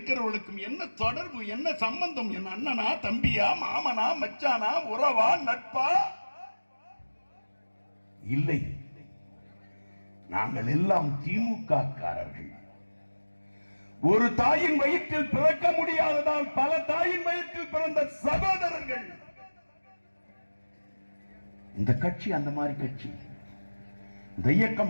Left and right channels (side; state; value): both; inverted; correlation -1.00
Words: என்ன தொடர்பு, என்ன சம்பந்தம்? என் அண்ணனா, தம்பியா, மாமனா, மச்சானா, உறவா, நட்பா? இல்லை, நாங்கள் எல்லாம் திமுக காரர்கள். ஒரு தாயின் வயிற்றில் பிறக்க முடியாததால் பல தாயின் வயிற்றில் பிறந்த சகோதரர்கள். இந்த கட்சி அந்த மாதிரி கட்சி, இந்த